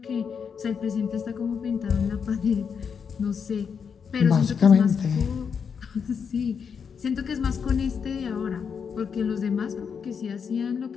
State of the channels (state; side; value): quieter; right; 6.5 dB